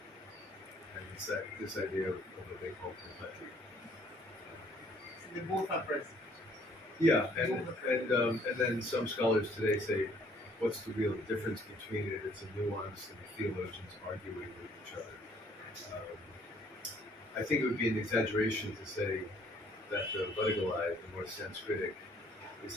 And it's this idea of what they call complexity. So they both are present. Yeah, and then some scholars today say, what's the real difference between it? It's a nuance, and the theologians arguing with each other. I think it would be an exaggeration to say that the Vadagalai, the more Sanskritic, is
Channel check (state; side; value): normal; both; correlation 0.62